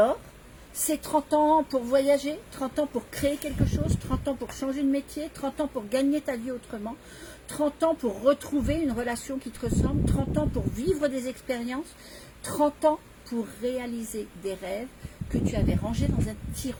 c'est 30 ans pour voyager, 30 ans pour créer quelque chose, 30 ans pour changer de métier, 30 ans pour gagner ta vie autrement, 30 ans pour retrouver une relation qui te ressemble, 30 ans pour vivre des expériences, 30 ans pour réaliser des rêves que tu avais rangés dans un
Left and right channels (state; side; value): identical; both; correlation 1.00